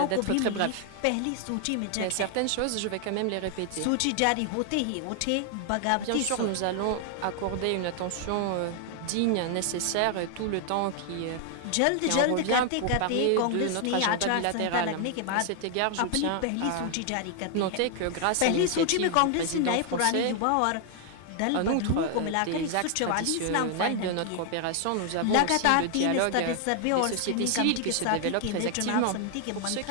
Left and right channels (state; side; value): different; both; correlation 0.00